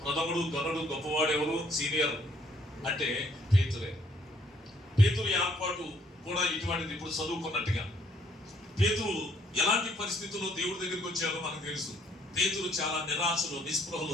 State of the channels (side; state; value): both; normal; correlation 0.66